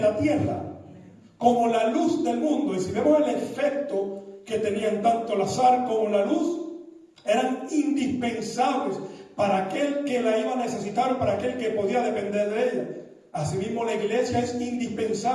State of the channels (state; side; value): identical; both; correlation 1.00